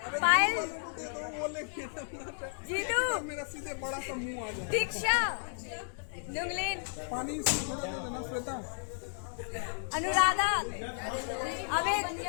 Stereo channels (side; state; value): right; silent; digital silence